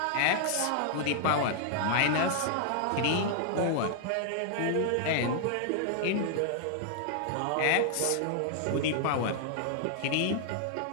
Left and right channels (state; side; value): different; both; correlation -0.01